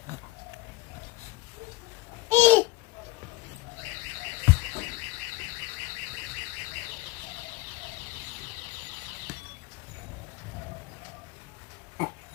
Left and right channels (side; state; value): right; quieter; 18.4 dB